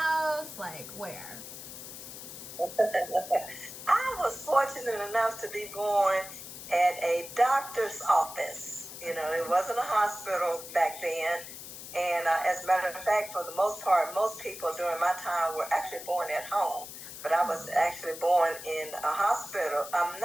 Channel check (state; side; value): noise; left; hiss, 12 dB below the sound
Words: Like where? I was fortunate enough to be born at a doctor's office. You know, it wasn't a hospital back then. And as a matter of fact, for the most part, most people during my time were actually born at home. But I was actually born in a hospital,